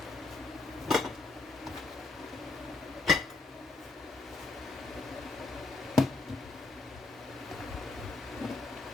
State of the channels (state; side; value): quieter; right; 3.6 dB